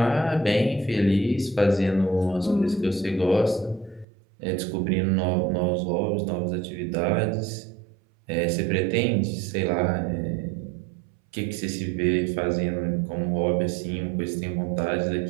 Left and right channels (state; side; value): drops out; left; at 4.0 s